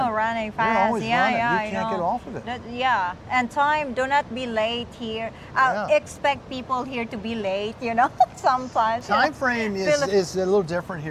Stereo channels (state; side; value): identical; both; correlation 1.00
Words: running fast. You're always Yeah, running. yeah, You I can't get know. off of it. Yeah, and time. Do not be late here. Yeah. Expect people here to be late. Sometimes. Time frame is a little different